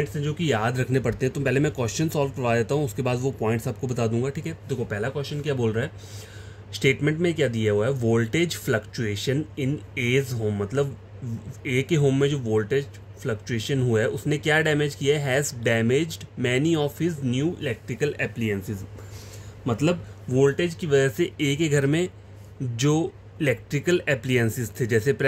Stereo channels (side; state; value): both; identical; correlation 1.00